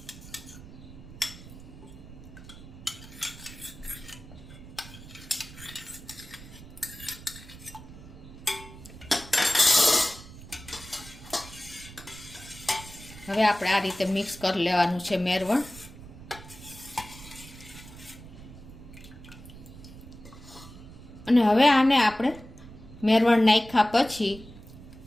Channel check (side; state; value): right; noise; rumble, 16 dB below the sound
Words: હવે આપણે આ રીતે મિક્સ કરી લેવાનું છે મેરવણ. અને હવે આને આપણે મેરવણ નાખ્યા પછી